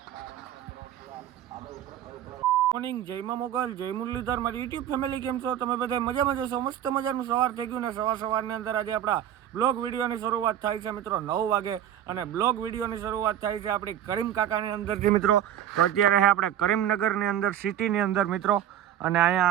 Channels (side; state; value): left; quieter; 10.8 dB